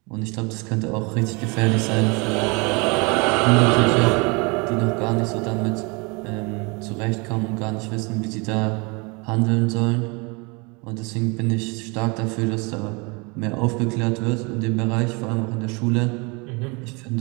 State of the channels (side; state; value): left; quieter; 29.3 dB